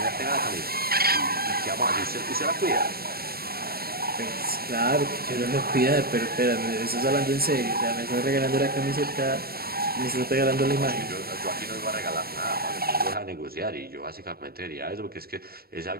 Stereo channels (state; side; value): late; left; 0.44 ms